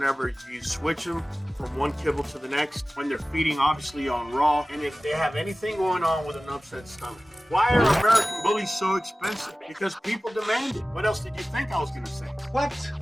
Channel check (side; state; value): both; normal; correlation 0.97